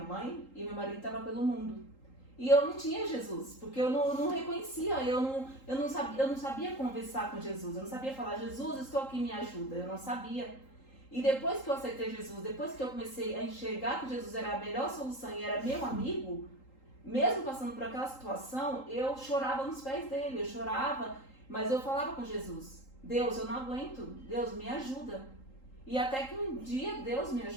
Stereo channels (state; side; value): late; right; 3.8 ms